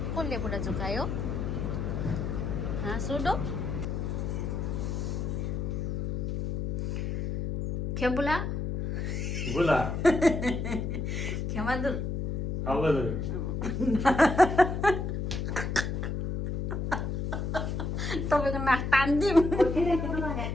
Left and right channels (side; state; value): left; noise; hum, 2 dB below the sound